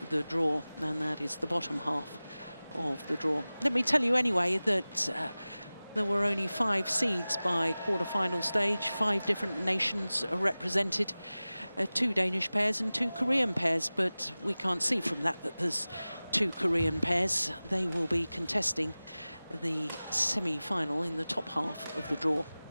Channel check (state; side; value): inverted; both; correlation -0.98